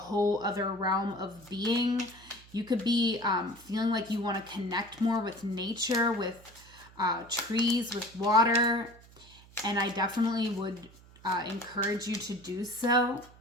other realm of being. You could be feeling like you want to connect more with nature, with trees, with water. And I definitely would encourage you to do so.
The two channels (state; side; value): noise; right; hum, 23 dB below the sound